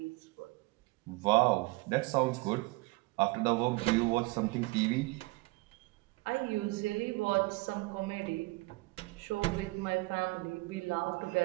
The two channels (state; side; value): quieter; left; 23.8 dB